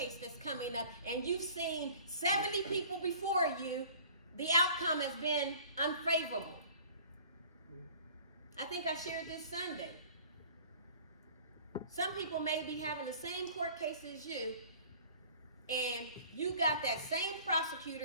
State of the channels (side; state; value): both; inverted; correlation -0.48